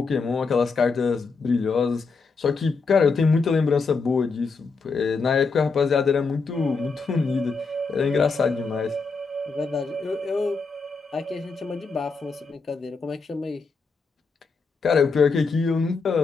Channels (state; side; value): quieter; right; 4.6 dB